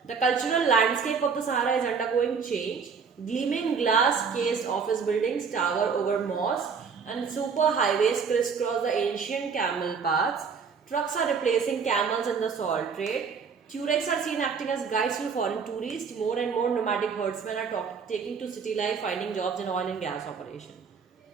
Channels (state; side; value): quieter; left; 5.9 dB